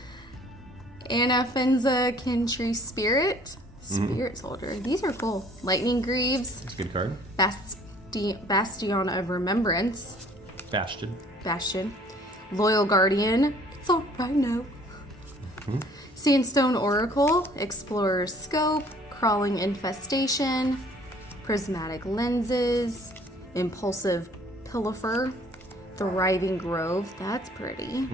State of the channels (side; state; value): both; normal; correlation 0.56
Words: Anafenza Kintree Spirit. Spirit Soldier. These are cool. Lightning Greaves. It's a good card. Bastion of Remembrance. Bastion. Loyal Guardian. It's all right now. Sandstone Oracle. Explorer's Scope. Crawling Infestation. Prismatic Lenses. Impulsive Pilfer. Thriving Grove. That's pretty.